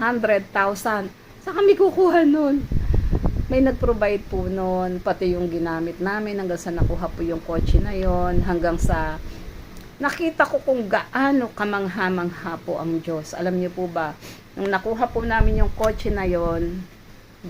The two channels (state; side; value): identical; both; correlation 1.00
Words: Saan kami kukuha nun? May nag-provide po nun, pati yung ginamit namin hanggang sa nakuha po yung kotse na yon, hanggang sa nakita ko kung gaano kamangha-mangha po ang Diyos. Alam niyo po ba, nung nakuha po namin yung kotse na yon,